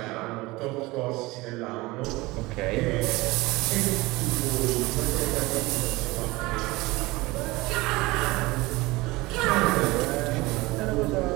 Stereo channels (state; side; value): quieter; left; 21.5 dB